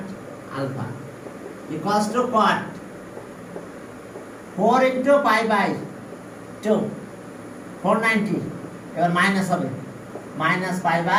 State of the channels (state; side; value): identical; both; correlation 1.00